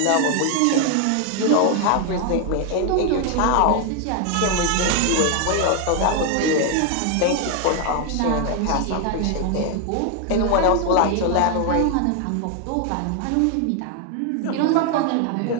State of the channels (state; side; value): different; both; correlation 0.00